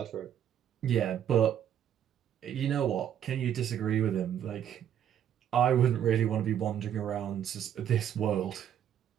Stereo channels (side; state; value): left; quieter; 9.8 dB